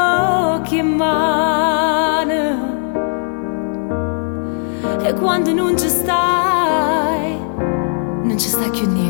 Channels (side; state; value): right; silent; digital silence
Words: e mani e quando non ci stai, non ci sta più